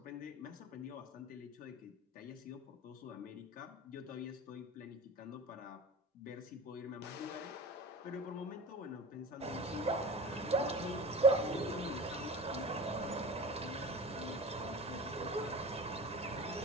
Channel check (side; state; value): both; normal; correlation 0.35